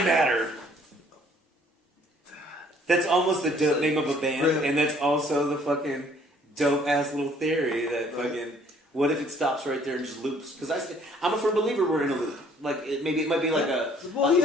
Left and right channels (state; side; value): normal; both; correlation 0.60